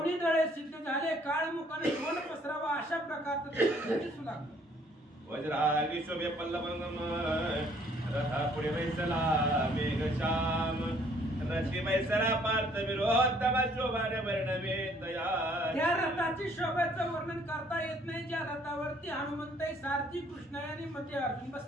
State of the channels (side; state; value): both; normal; correlation 0.62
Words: दळे सिद्ध झाले काळमुखाने ध्वज पसरावा अशा प्रकारचं दिसू लागलं वज्रागी शोभे पल्लवंगम रथा पुढे वैसला मेघश्याम रथी वैसला पार्थ विरोधम शोभाने वर्णवे तयार त्या रथाची शोभेचं वर्णन करता येत नाही ज्या रथावरती हनुमंत सारथी कृष्ण आणि मध्ये अर्जुन